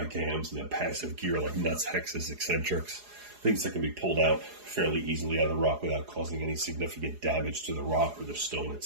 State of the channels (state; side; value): late; left; 4.8 ms